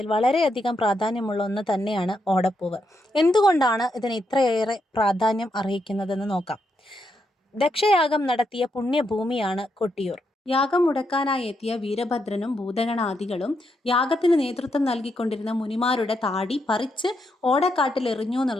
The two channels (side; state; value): both; normal; correlation 0.81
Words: വളരെയധികം പ്രാധാന്യമുള്ള ഒന്ന് തന്നെയാണ് ഓടപ്പൂവ്. എന്തുകൊണ്ടാണ് ഇതിന് ഇത്രയേറെ പ്രാധാന്യം അർഹിക്കുന്നതെന്ന് നോക്കാം. ദക്ഷയാഗം നടത്തിയ പുണ്യഭൂമിയാണ് കൊട്ടിയൂർ. യാഗം മുടക്കാനായി എത്തിയ വീരഭദ്രനും ഭൂതഗണാദികളും യാഗത്തിന് നേതൃത്വം നൽകിക്കൊണ്ടിരുന്ന മുനിമാരുടെ താടി പറിച്ച് ഓടക്കാട്ടിൽ എറിഞ്ഞു